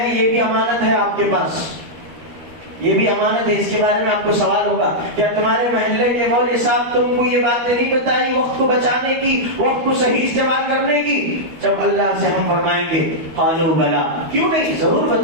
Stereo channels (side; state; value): left; late; 13 ms